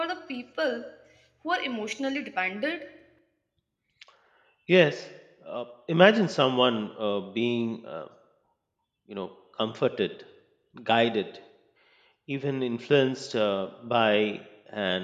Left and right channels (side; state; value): both; identical; correlation 1.00